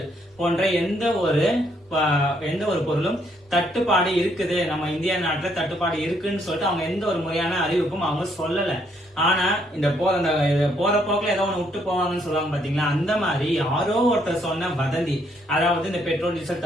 போன்ற எந்த ஒரு பொருளும் தட்டுப்பாடு இருக்குது, நம்ம இந்தியா நாட்டுல தட்டுப்பாடு இருக்குன்னு சொல்லிட்டு அவங்க எந்த ஒரு முறையான அறிவிப்பும் அவங்க சொல்லல. ஆனா இந்த போற போக்குல ஏதோ ஒண்ணு விட்டு போவாங்கன்னு சொல்லுவாங்க பாத்தீங்களா, அந்த மாதிரி யாரோ ஒருத்தர் சொன்ன வதந்தி, அதாவது இந்த பெட்ரோல் டீசல்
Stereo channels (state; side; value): normal; both; correlation 0.70